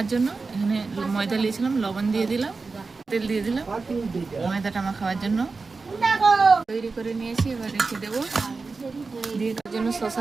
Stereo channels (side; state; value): left; quieter; 4.2 dB